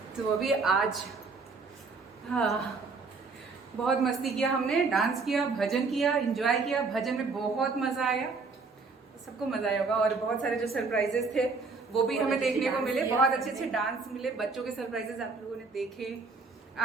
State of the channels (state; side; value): quieter; left; 4.3 dB